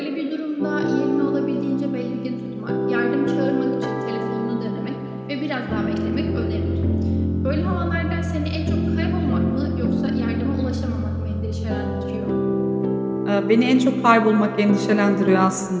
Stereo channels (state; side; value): identical; both; correlation 1.00